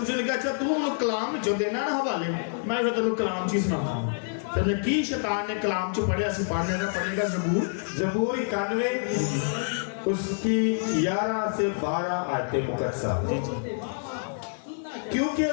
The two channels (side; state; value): right; silent; 60 dB below the other